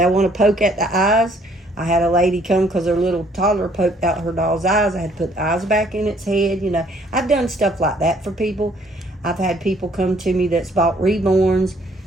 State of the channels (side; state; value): both; normal; correlation 0.62